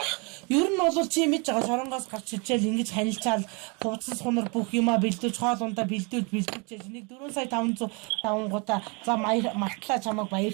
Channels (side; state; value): left; quieter; 31.5 dB